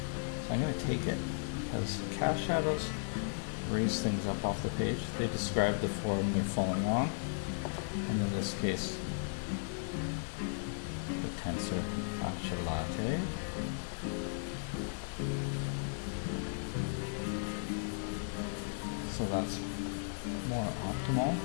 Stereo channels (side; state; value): right; silent; 54 dB below the other